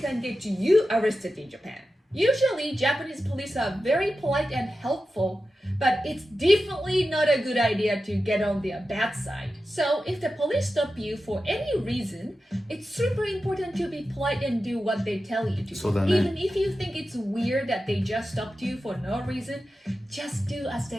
get you arrested in Japan. Usually, Japanese police are very polite and helpful, but it's definitely not a good idea to get on their bad side. So if the police stop you for any reason, it's super important to be polite and do what they tell you to. Even if you think it's weird that they just stopped you for no reason, just do as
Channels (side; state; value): both; normal; correlation 0.92